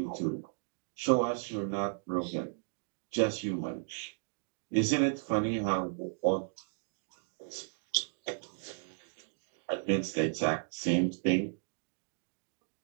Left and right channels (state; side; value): silent; left; digital silence